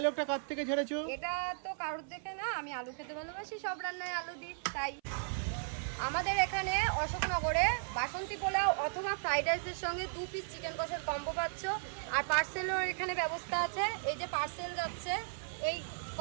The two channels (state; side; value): silent; left; 54 dB below the other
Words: কার থেকে ঝেড়েছো? এটা তো কারোর দেখে না, আমি আলু খেতে ভালোবাসি, সব রান্নায় আলু দিই তাই। আমাদের এখানে অশোকনগরে বাসন্তী পোলাও অথবা ফ্রাইড রাইসের সঙ্গে 2 পিস চিকেন কষার কম্বো পাচ্ছ। আর পার্সেলের এখানে ব্যবস্থা আছে, এই যে পার্সেল যাচ্ছে, এই